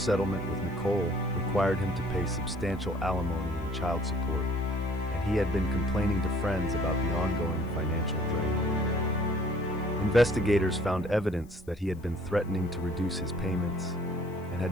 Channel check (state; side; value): noise; left; hiss, 30 dB below the sound